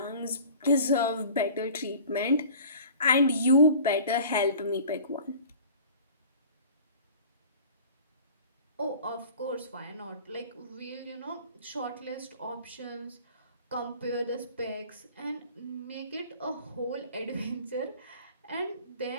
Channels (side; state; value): both; inverted; correlation -0.44